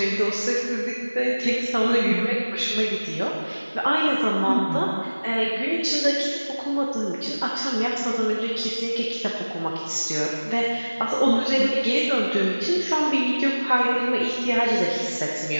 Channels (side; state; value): both; inverted; correlation -1.00